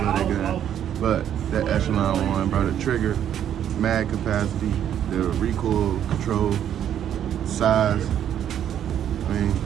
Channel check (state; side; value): quieter; left; 10.0 dB